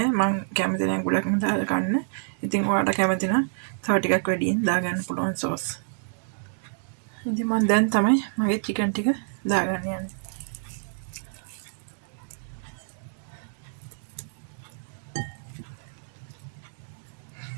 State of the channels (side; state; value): left; silent; digital silence